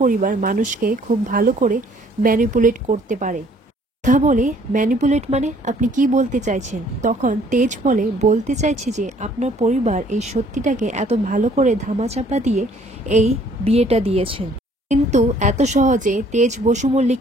পরিবার মানুষকে খুব ভালো করে ম্যানিপুলেট করতে পারে। সুধা বলে, ম্যানিপুলেট মানে আপনি কি বলতে চাইছেন? তখন তেজ বলে, বলতে চাইছি যে আপনার পরিবার এই সত্যিটাকে এত ভালো করে ধামাচাপা দিয়ে এই বিয়েটা দিয়েছেন, কিন্তু এত সহজে তেজ বসু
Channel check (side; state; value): both; normal; correlation 0.60